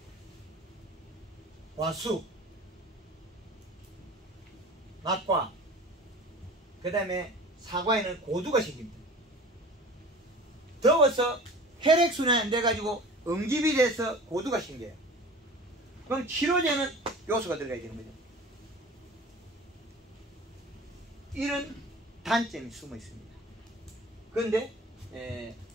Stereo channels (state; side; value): normal; both; correlation 0.41